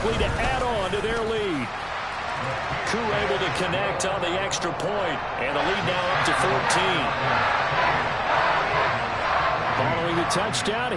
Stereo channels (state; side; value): identical; both; correlation 1.00